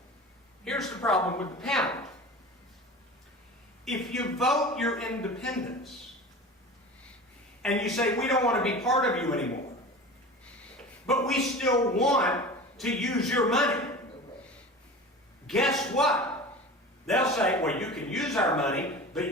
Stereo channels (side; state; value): both; normal; correlation 0.35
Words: Here's the problem with the pound. If you vote your independence and you say, we don't want to be part of you anymore, but we still want to use your money, guess what? They'll say, well, you can use our money,